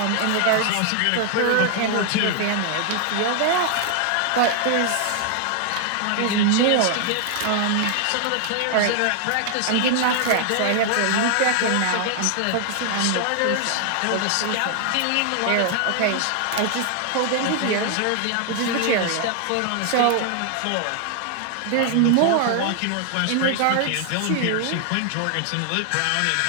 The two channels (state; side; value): different; both; correlation 0.00